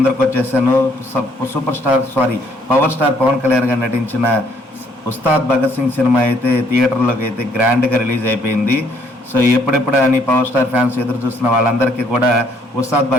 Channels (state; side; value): normal; both; correlation 0.66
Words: వచ్చేసాను. పవర్ స్టార్ పవన్ కళ్యాణ్ గారు నటించిన ఉస్తాద్ భగత్ సింగ్ సినిమా అయితే థియేటర్లోకి అయితే గ్రాండ్గా రిలీజ్ అయిపోయింది. సో ఎప్పుడెప్పుడు అని పవర్ స్టార్ ఫ్యాన్స్ ఎదురు చూస్తున్న వాళ్ళందరికీ కూడా ఉస్తాద్